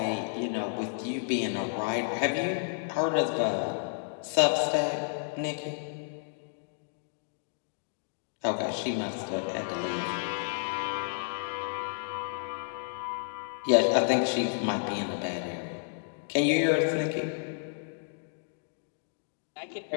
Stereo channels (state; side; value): silent; right; digital silence